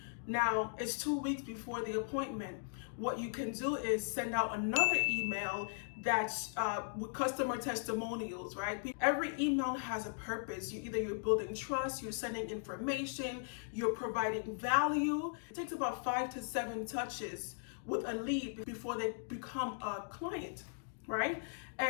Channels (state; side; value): silent; right; digital silence